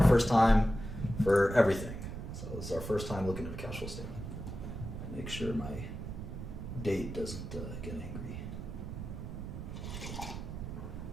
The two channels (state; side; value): noise; right; rumble, 7 dB below the sound